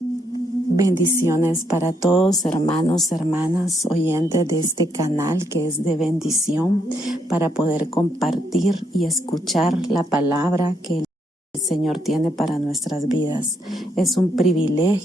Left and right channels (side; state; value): both; normal; correlation 0.76